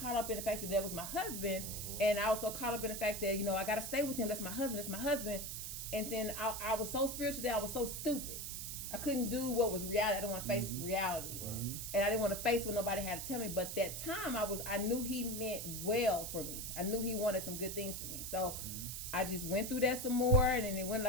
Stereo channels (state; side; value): noise; right; hiss, 6 dB below the sound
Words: up in the fact that was my husband, and I was so caught up in the fact that, I got to stay with him. That's my husband. And then I was so spiritual that I was so stupid. I couldn't do what was reality. I didn't want to face reality. And I didn't want to face what nobody had to tell me. But that time I knew he meant well for me. I knew he wanted some good things for me. So I just went through that some more, and then it went